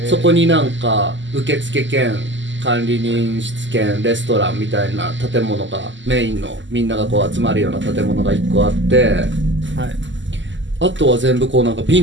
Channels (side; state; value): left; late; 0.54 ms